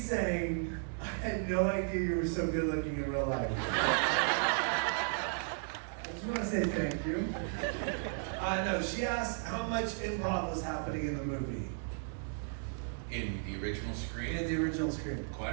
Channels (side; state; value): left; silent; 55 dB below the other